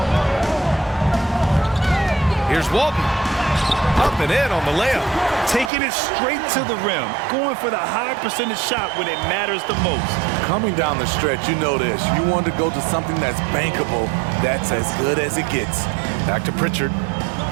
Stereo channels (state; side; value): drops out; left; at 5.7 s